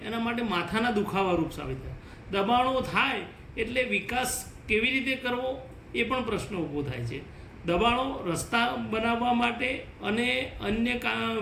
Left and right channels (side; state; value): both; identical; correlation 1.00